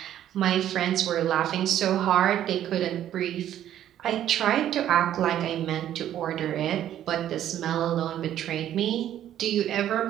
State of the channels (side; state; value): left; quieter; 11.4 dB